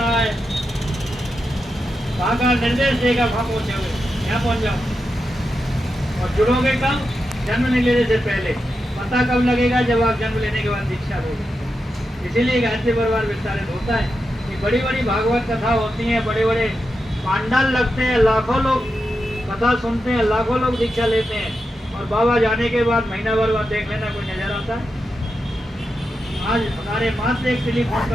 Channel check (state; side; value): normal; both; correlation 0.88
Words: है, वहां का निर्देश देगा, वहां पहुंचोगे, यहाँ पहुंच जाओ। और जुड़ोगे कब? जन्म नहीं लेने से पहले। पता कब लगेगा? जब आप जन्म लेने के बाद दीक्षा लोगे। इसीलिए गायत्री परिवार विस्तारित होता है कि बड़ी बड़ी भागवत कथा होती है, बड़े बड़े पांडाल लगते हैं, लाखों लोग कथा सुनते हैं, लाखों लोग दीक्षा लेते हैं, और बाबा जाने के बाद महीना भर बाद देख लेना कोई नजर आता है। आज हमारे मात्र एक टेलीफोन